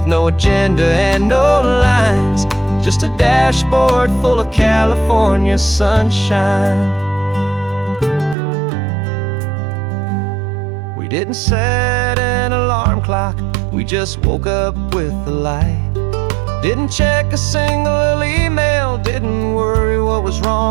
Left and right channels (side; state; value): left; drops out; at 8.3 s